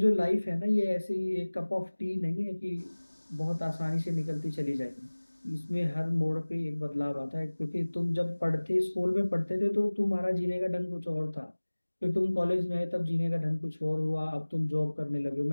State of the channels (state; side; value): inverted; both; correlation -1.00